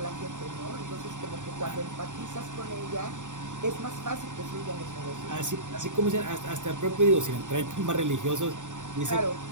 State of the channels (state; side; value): late; left; 0.86 ms